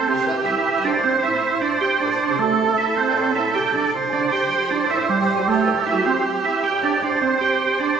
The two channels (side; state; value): left; quieter; 3.6 dB